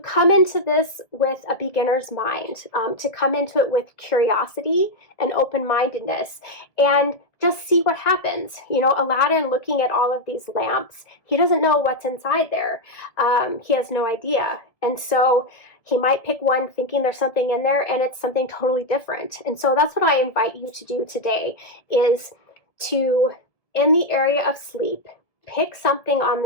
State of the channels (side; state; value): right; late; 1.8 ms